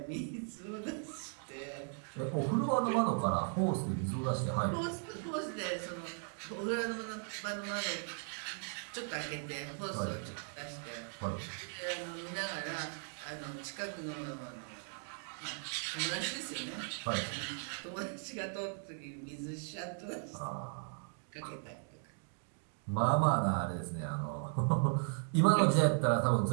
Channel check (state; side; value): silent; left; 53 dB below the other